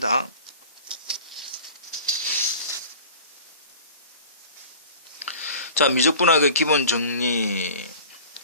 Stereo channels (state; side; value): inverted; both; correlation -0.42